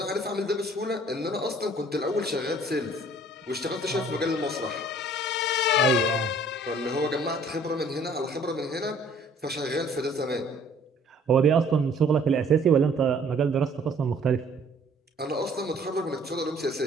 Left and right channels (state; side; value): normal; both; correlation 0.56